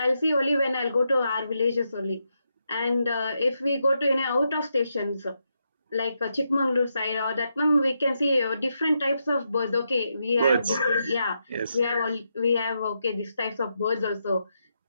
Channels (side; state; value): both; inverted; correlation -0.83